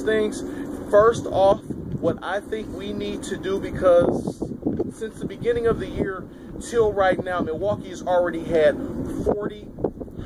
things. First off, what I think we need to do, because since the beginning of the year till right now, Milwaukee has already had 40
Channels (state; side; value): identical; both; correlation 1.00